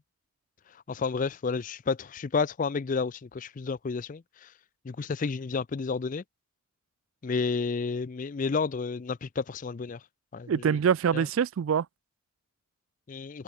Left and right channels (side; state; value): both; normal; correlation 0.08